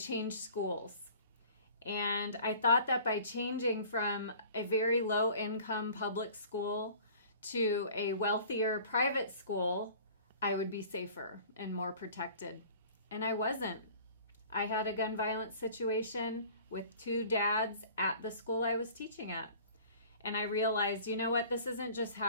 schools. And I thought that by changing from a very low-income public school to a wealthier private school, I would be safer and more protected. And I wasn't. I had a gun violence situation with two dads at the school I was teaching at. And I realized, you know what, this isn't just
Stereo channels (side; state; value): both; inverted; correlation -0.47